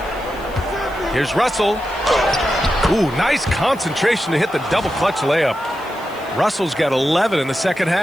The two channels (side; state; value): left; noise; hiss, 24 dB below the sound